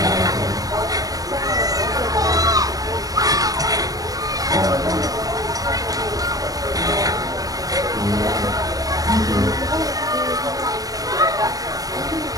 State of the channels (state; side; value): late; left; 0.18 ms